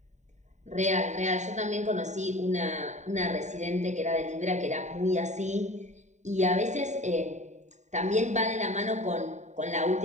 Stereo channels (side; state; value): left; late; 0.34 ms